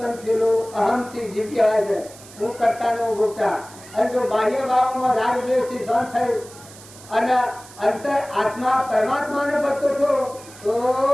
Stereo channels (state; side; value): noise; right; hiss, 20 dB below the sound